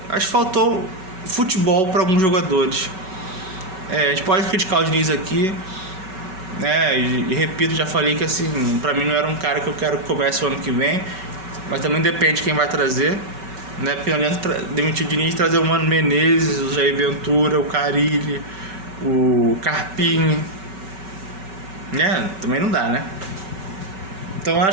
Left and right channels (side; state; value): left; late; 5.3 ms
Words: acho que faltou futebol para alguns jogadores. A gente pode criticar o Diniz aqui, né? E repito, já falei que assim, para mim não era um cara que eu quero que comece o ano que vem, mas também depende de quem vai trazer. Né? Porque não adianta demitir o Diniz e trazer o Mano Menezes, o Jair Ventura, o Carille, o Carpini, né? Também não dá, né? Então